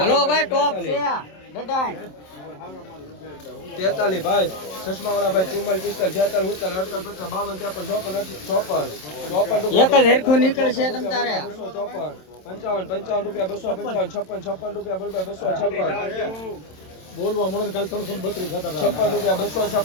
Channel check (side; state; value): right; late; 27 ms